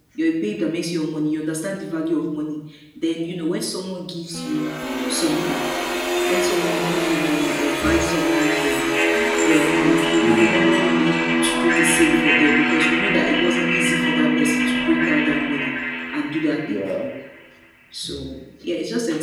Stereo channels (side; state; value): both; identical; correlation 1.00